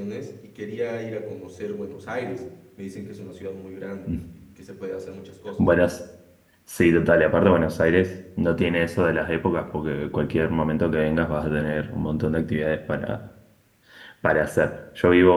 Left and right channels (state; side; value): identical; both; correlation 1.00